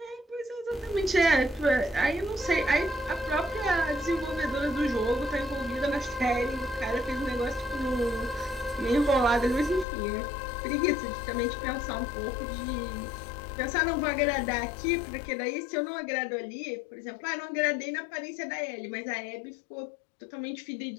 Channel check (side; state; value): right; drops out; at 9.9 s